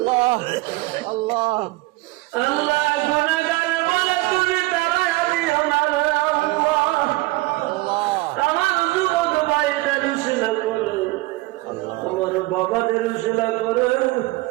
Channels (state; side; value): quieter; left; 20.8 dB